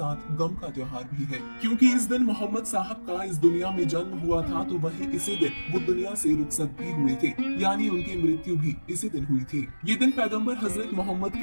गम का त्योहार भी है, क्योंकि इस दिन मोहम्मद साहब का इस दुनिया में जन्म हुआ था, तो वही इसी दिन वो दुनिया से रुखसत भी हुए थे, यानी उनकी मृत्यु भी इसी दिन हुई थी। ये दिन पैगंबर हजरत मोहम्मद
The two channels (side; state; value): both; inverted; correlation -1.00